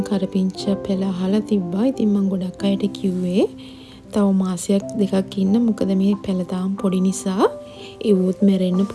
කරපිංච පැල අහලා තිබ්බා. ඉතින් මම ගොඩක් අයට කිව්වේ තව මාසයක් දෙකක් ඉන්න. මොකද මේ පැල තාම පොඩි නිසා ඒවොත් මැරෙන්න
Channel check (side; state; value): both; identical; correlation 1.00